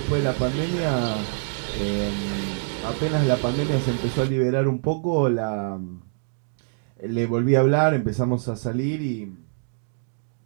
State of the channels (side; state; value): left; silent; digital silence